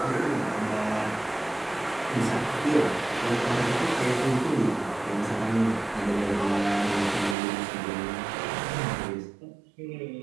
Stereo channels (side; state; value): left; drops out; at 7.4 s